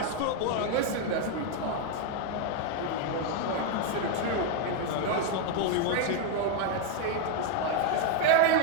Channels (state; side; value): different; both; correlation 0.01